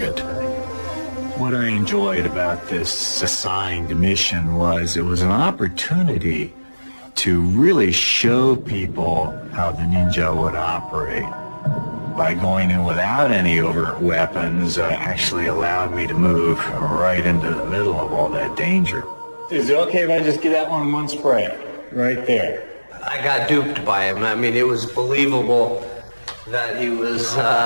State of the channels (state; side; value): inverted; both; correlation -1.00